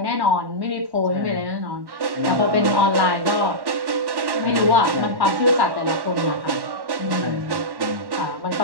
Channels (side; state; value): left; late; 1.1 ms